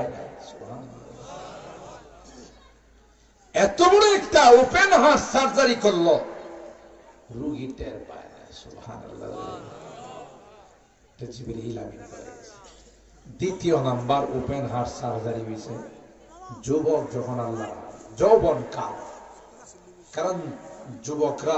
না। এত বড় একটা ওপেন হার্ট সার্জারি করলো, রোগী টের পায় না। সুবহানাল্লাহ। জিবরিল আমিন বলে গেছে। দ্বিতীয় নাম্বার ওপেন হার্ট সার্জারি হয়েছে যুবক যখন আল্লাহ যৌবন কাল। কারণ যুবকরা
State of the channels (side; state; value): both; identical; correlation 1.00